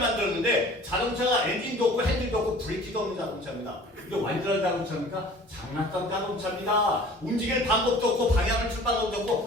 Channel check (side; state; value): both; normal; correlation 0.47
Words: 만들었는데 자동차가 엔진도 없고 핸들도 없고 브레이크도 없는 자동차입니다. 이게 완전한 자동차입니까? 장난감 자동차입니다. 움직일 방법도 없고 방향을 틀 방법도